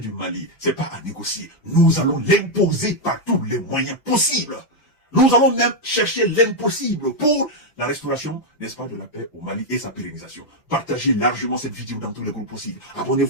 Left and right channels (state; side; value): late; right; 5.9 ms